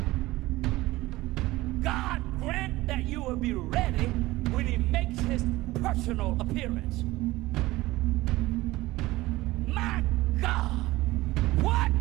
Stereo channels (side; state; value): left; quieter; 18.6 dB